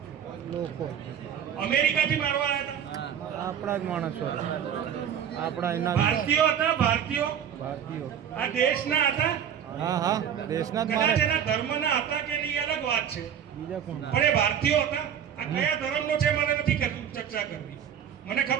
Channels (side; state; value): left; quieter; 8.7 dB